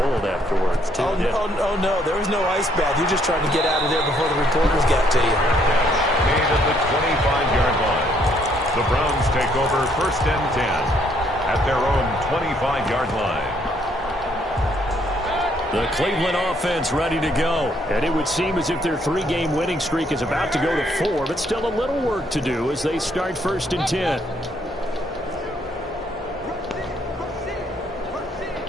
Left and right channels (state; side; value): normal; both; correlation 0.68